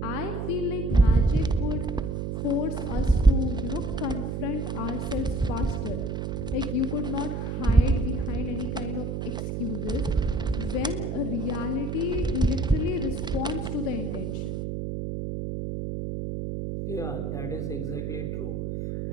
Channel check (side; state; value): right; noise; hum, 3 dB below the sound